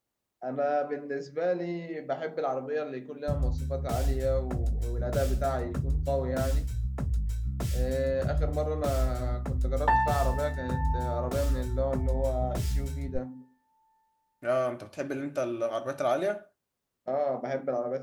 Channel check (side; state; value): both; identical; correlation 1.00